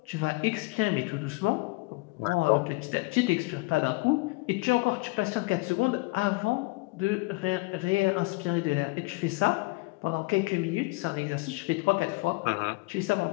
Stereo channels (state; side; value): quieter; right; 24.9 dB